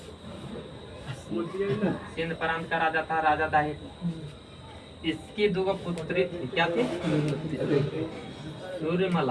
सिंध प्रांत का राजा था राजा दाहिर। इसकी दो पुत्री थी। क्या थी?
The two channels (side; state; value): both; identical; correlation 1.00